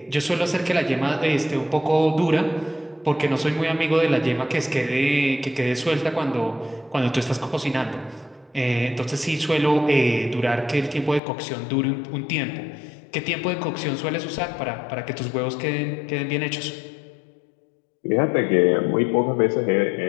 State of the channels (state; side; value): drops out; right; at 11.2 s